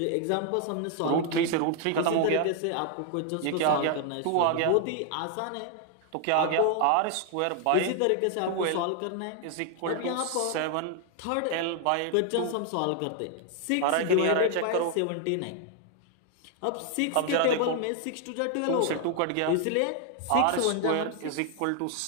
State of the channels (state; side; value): different; both; correlation 0.00